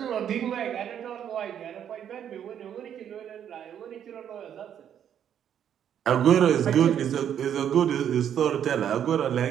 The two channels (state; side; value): quieter; left; 9.3 dB